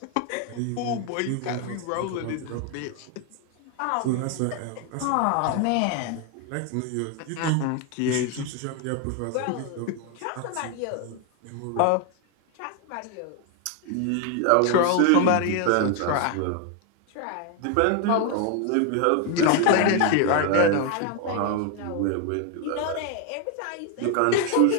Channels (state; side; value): different; both; correlation 0.01